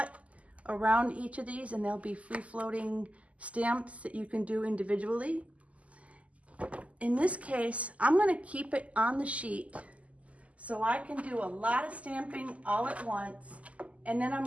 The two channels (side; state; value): left; late; 0.068 ms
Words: around each of these, and there'll be free floating stamps that you can do individually. In this case, I'm going to keep it on the sheet so I can do a lot of stamping all at once And then